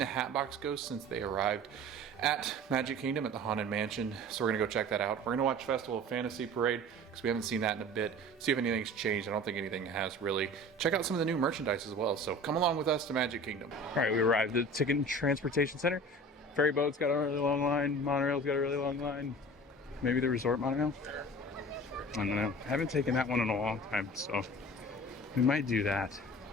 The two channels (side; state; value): both; normal; correlation 0.40